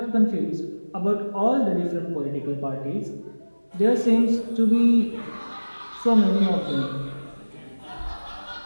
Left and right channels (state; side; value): inverted; both; correlation -1.00